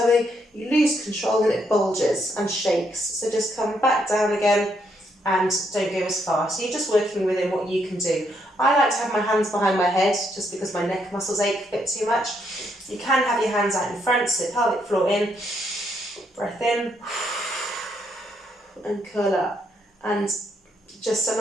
you lose control and it bulges and shakes. So just come back down again and don't go as far. So you're just working within what you can do. I like to have my hands behind my head just because my neck muscles ache a bit too much. You can have your hands out in front, so pelvic floor in, breath in, and curl up. And just so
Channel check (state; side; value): normal; both; correlation 0.75